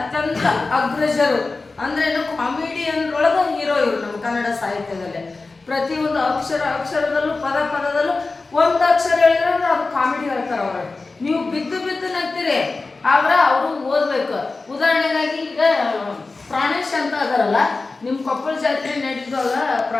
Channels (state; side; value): quieter; right; 3.7 dB